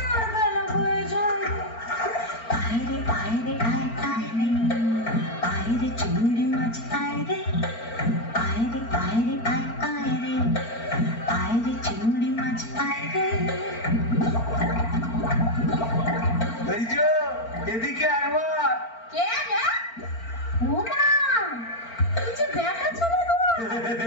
গলা হয়ে যায়। আইরে আইরে আয় আইরে, আইরে চিংড়ি মাছ আইরে, আইরে আইরে আয় আইরে, আইরে চিংড়ি মাছ আইরে। এই যে, এদিকে একবার। কে রে? ওমা, এই যে ব্যাটা ছেলে গো।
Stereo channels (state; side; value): late; right; 4.4 ms